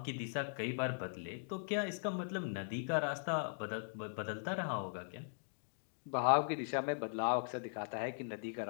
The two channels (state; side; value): silent; right; digital silence